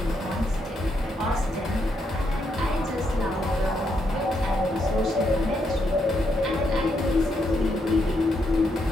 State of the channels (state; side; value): normal; both; correlation 0.78